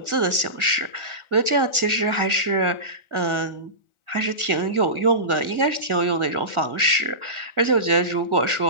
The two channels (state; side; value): late; left; 1.4 ms